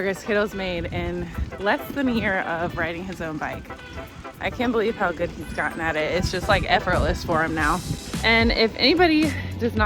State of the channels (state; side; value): identical; both; correlation 1.00